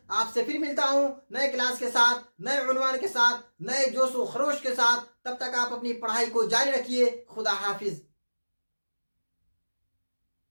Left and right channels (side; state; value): both; inverted; correlation -1.00